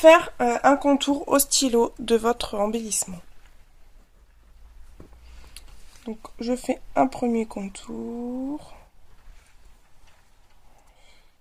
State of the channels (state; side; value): identical; both; correlation 1.00